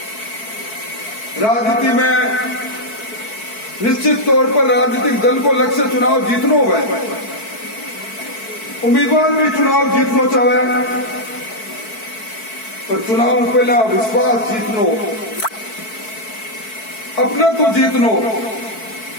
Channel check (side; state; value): right; late; 4.6 ms